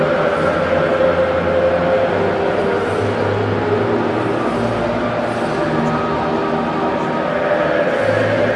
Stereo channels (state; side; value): identical; both; correlation 1.00